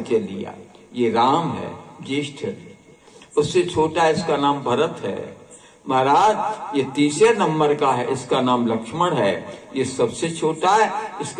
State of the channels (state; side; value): identical; both; correlation 1.00